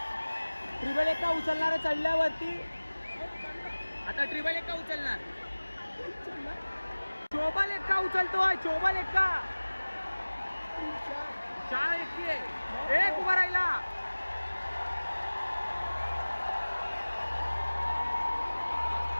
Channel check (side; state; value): both; inverted; correlation -1.00